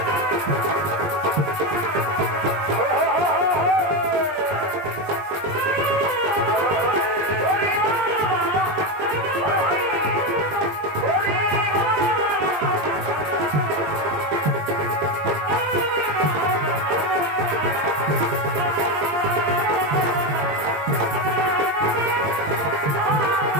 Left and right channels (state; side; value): late; left; 20 ms